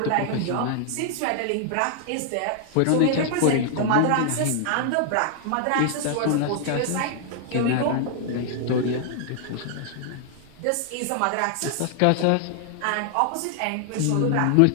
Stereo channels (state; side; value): different; both; correlation 0.00